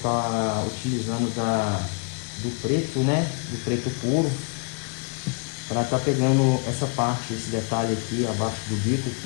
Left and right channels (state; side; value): quieter; right; 34.5 dB